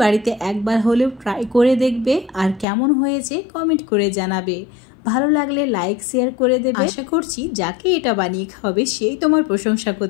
বাড়িতে একবার হলেও ট্রাই করে দেখবে, আর কেমন হয়েছে কমেন্ট করে জানাবে। ভালো লাগলে লাইক শেয়ার করে দেবে। আশা করছি যাকে এটা বানিয়ে খাওয়াবে সেই তোমার প্রশংসা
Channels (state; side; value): drops out; right; at 2.7 s